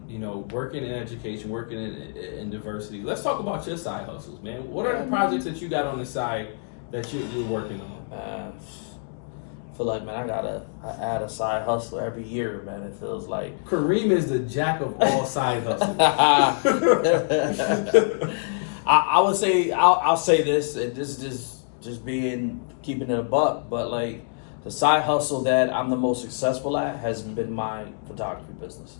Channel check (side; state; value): right; silent; digital silence